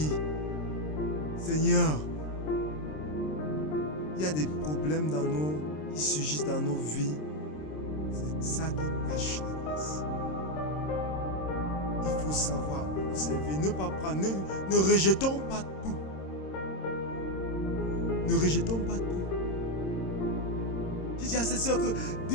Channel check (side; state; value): right; late; 26 ms